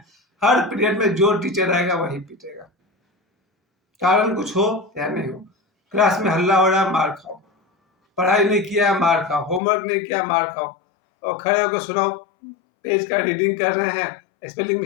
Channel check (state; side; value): drops out; right; at 9.6 s